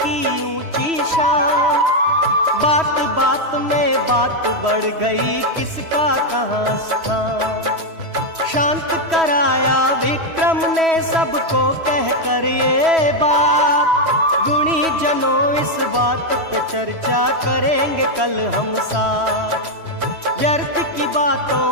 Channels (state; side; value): late; left; 3.1 ms